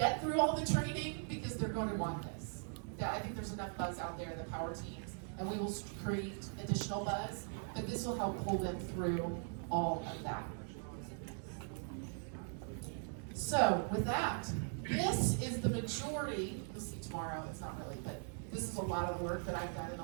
through all the training because they're going to want this. I think there's enough buzz out there in the power teams, and we will create additional buzz, but this will help pull them through all of that. So with that, this is the majority, you'll see tomorrow, it's not really, but this is a lot of work that I've done in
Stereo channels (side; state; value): left; silent; 51 dB below the other